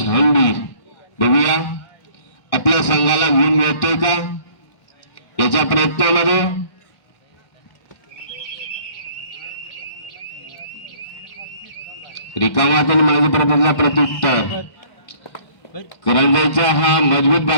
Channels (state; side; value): late; right; 1.6 ms